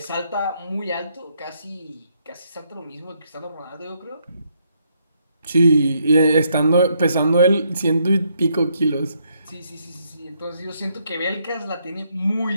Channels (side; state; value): both; inverted; correlation -0.74